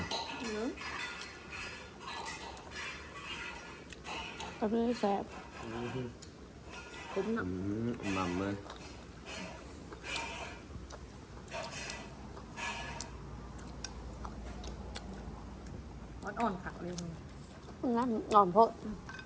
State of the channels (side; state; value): both; identical; correlation 1.00